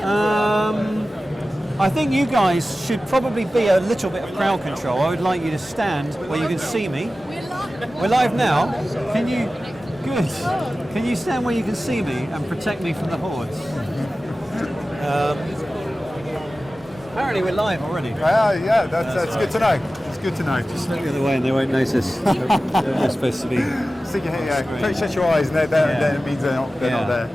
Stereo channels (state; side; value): normal; both; correlation 0.95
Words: I think you guys should probably be a little bit of crowd control. I would like you to stand where you can see me. We're live now. Can you? Good. Can you stand where you can see me and protect me from the hordes? Apparently we're live already. Yeah, that's good to know. It's good to know. Just look the other way and they won't notice. They're supposed to be. Stick your head, yeah. Shut your eyes, and then it means they're not there.